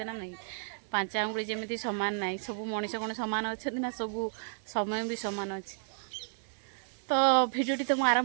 ना नहीं पांच आंगुड़ी जमी सामान ना सब मनीष कौन सामान अच्छा ना सब समय भी सामान अच्छे तो भिडियोटी तो मुझे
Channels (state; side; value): silent; left; digital silence